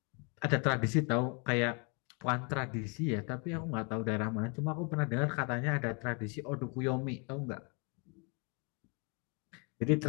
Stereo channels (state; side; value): quieter; right; 34.7 dB